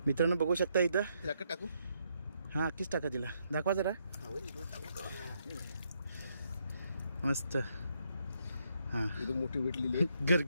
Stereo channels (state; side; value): inverted; both; correlation -0.75